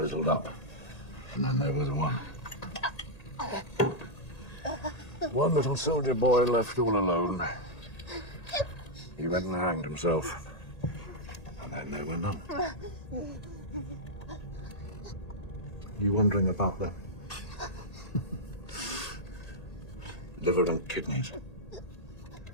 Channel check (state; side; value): late; right; 1.8 ms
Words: up, and then there was one. One little soldier boy left all alone. He went and hanged himself. And then there were none. You wondering about the liver and kidneys?